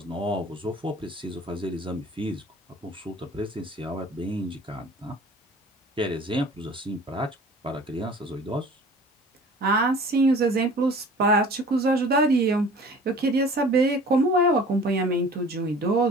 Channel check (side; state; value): both; normal; correlation 0.46